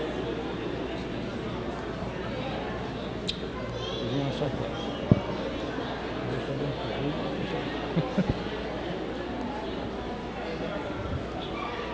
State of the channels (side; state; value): both; identical; correlation 1.00